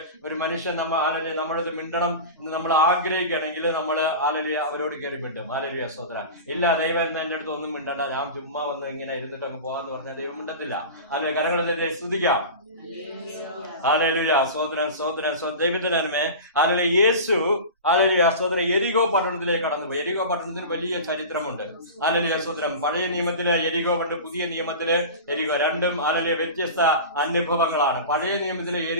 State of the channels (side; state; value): both; inverted; correlation -0.31